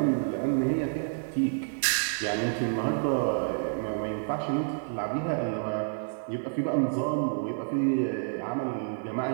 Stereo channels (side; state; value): left; silent; digital silence